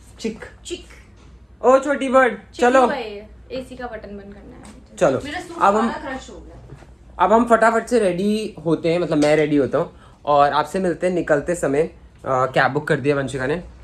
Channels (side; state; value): both; identical; correlation 1.00